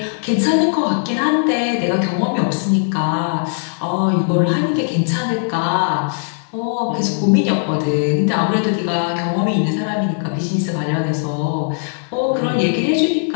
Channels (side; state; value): right; silent; digital silence